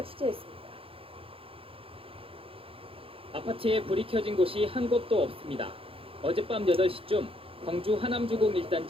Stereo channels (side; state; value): left; late; 0.27 ms